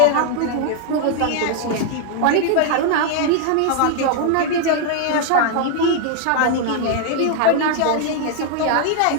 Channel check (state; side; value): different; both; correlation 0.00